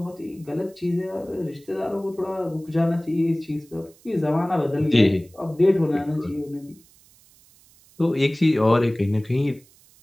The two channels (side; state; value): right; noise; hiss, 28 dB below the sound